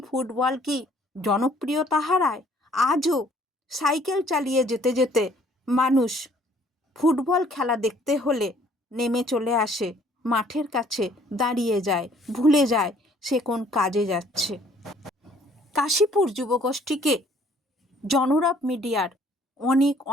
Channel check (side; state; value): both; normal; correlation 0.60